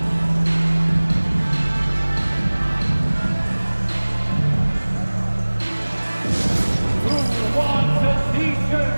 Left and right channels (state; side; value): inverted; both; correlation -1.00